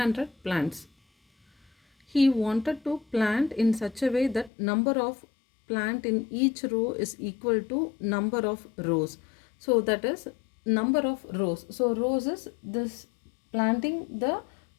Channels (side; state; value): right; drops out; at 4.5 s